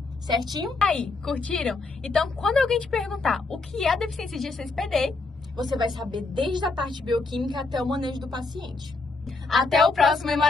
Certinho? Aí, curtiram? Então, quando alguém te perguntar o que é a deficiência de G6PD, você vai saber desde a parte bioquímica até o manejo do paciente. Até o próximo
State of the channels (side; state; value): right; quieter; 3.7 dB